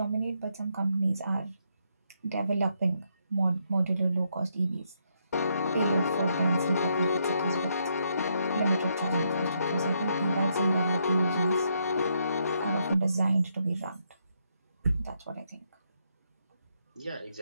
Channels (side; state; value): both; inverted; correlation -0.77